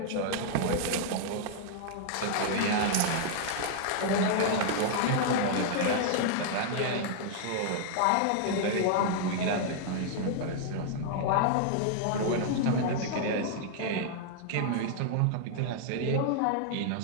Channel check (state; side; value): different; both; correlation -0.01